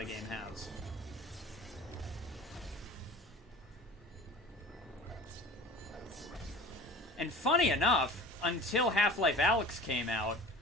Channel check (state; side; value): normal; both; correlation 0.41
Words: game has. And funny enough, until Half-Life Alyx came out,